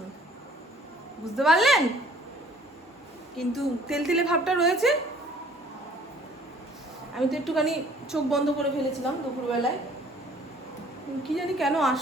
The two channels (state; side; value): normal; both; correlation 0.55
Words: বুঝতে পারলেন? কিন্তু তেলতেলে ভাবটা রয়েছে। আমি তো একটুখানি চোখ বন্ধ করে ফেলেছিলাম দুপুরবেলায়, কি জানি কেন